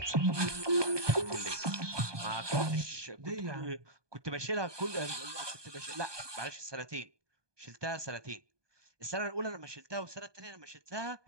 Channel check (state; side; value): late; left; 1.2 ms